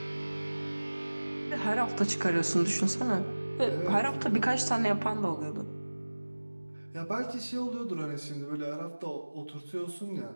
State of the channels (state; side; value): inverted; both; correlation -1.00